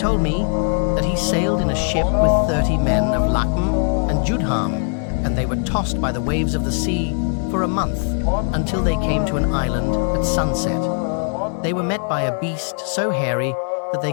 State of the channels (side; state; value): right; silent; 56 dB below the other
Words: me that he sailed in a ship with 30 men of Lakm and Judham, and they were tossed by the waves of the sea for a month until they came to an island at sunset. They were met by a beast so hairy that they